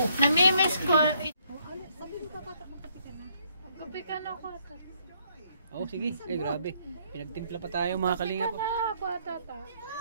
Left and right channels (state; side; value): inverted; both; correlation -0.69